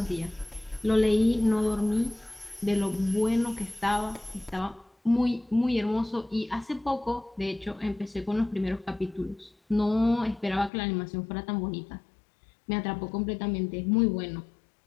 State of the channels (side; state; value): right; drops out; at 10.7 s